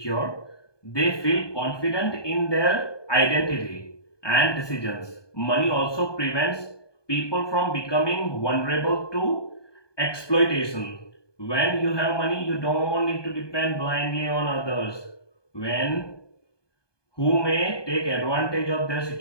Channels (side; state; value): right; late; 1.2 ms